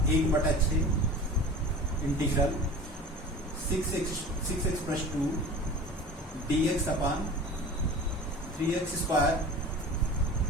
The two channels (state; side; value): normal; both; correlation 0.38